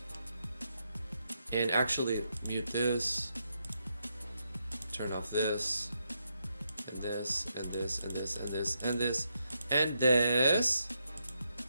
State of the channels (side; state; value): both; inverted; correlation -0.81